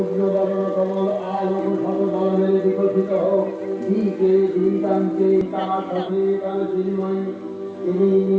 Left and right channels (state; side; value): identical; both; correlation 1.00